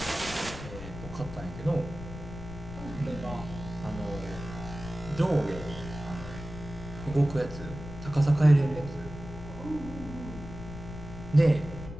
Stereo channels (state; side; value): noise; left; rumble, 11 dB below the sound